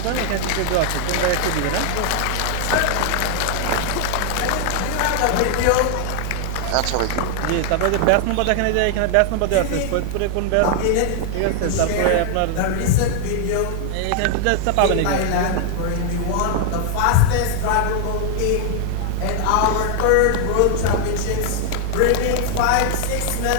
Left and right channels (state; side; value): different; both; correlation 0.00